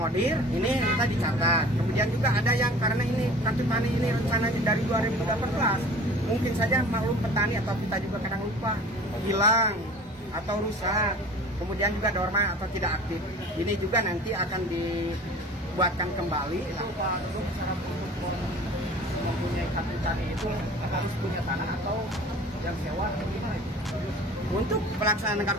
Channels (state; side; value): normal; both; correlation 0.43